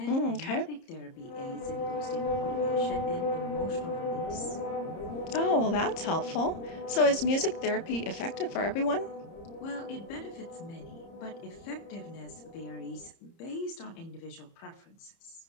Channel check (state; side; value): late; right; 30 ms